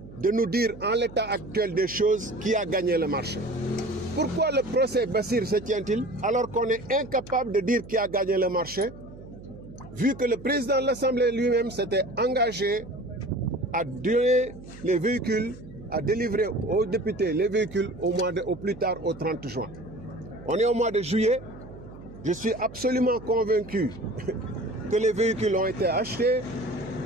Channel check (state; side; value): noise; right; hum, 17 dB below the sound